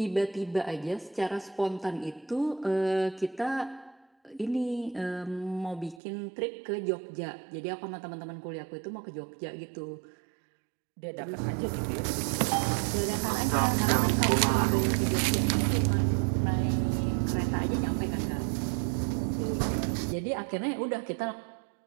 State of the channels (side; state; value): left; drops out; at 6.0 s